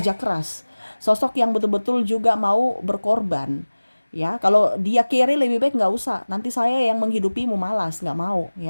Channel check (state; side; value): inverted; both; correlation -1.00